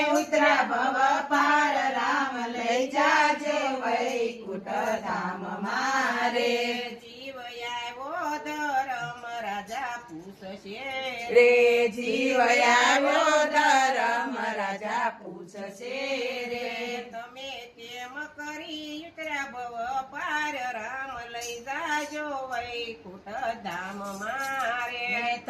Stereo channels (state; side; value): identical; both; correlation 1.00